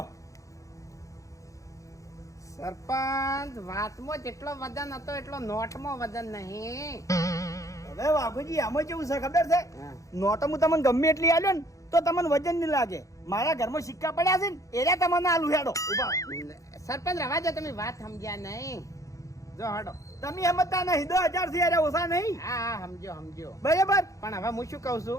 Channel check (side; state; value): right; late; 0.16 ms